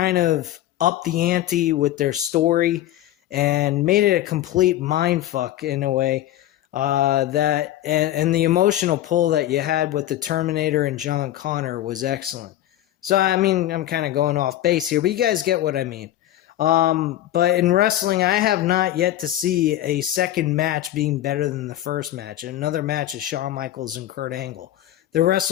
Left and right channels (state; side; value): quieter; right; 13.4 dB